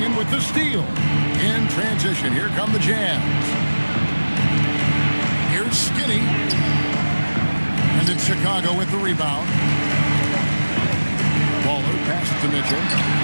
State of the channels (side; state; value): both; inverted; correlation -1.00